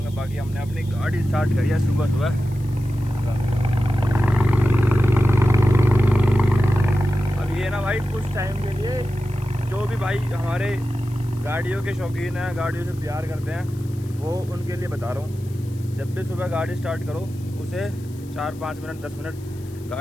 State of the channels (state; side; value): noise; left; hiss, 25 dB below the sound